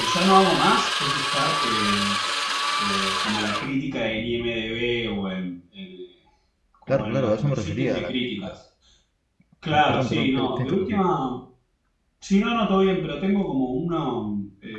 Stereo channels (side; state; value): both; identical; correlation 1.00